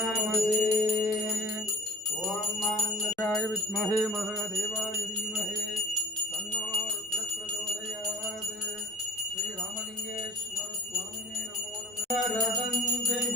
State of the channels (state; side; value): normal; both; correlation 0.48